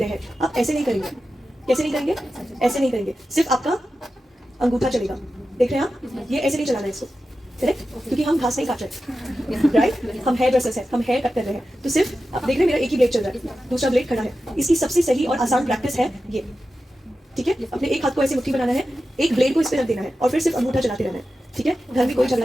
हैं, आप ऐसे नहीं करेंगे। कैसे नहीं करेंगे? ऐसे नहीं करेंगे, सिर्फ आपका अंगूठा चलेगा। देख रहे हैं आप? ये ऐसे नहीं चलाना है इसको, करेक्ट? क्योंकि हम घास नहीं काट रहे, राइट? हम हेयर ड्रेसर्स हैं, हम हेयर कट कर रहे हैं। तो सिर्फ आप देख रहे हैं मेरा एक ही ब्लेड चल रहा है, दूसरा ब्लेड खड़ा है। इसकी सबसे सही और आसान प्रैक्टिस है ये, ठीक है? अपने एक हाथ को ऐसे मुट्ठी बनाना है, एक ब्लेड को इस पे रख देना है और फिर सिर्फ अंगूठा चलाते रहना है, ठीक है? घर में कोई झगड़ा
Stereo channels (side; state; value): both; normal; correlation 0.92